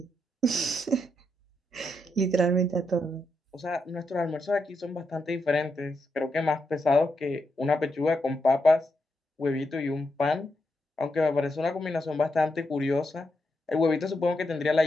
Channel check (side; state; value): both; normal; correlation 0.83